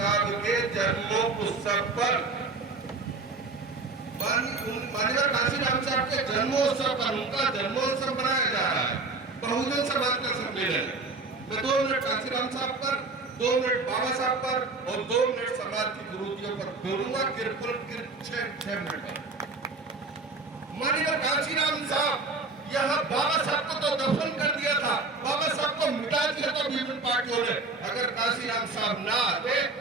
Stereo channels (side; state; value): left; quieter; 3.7 dB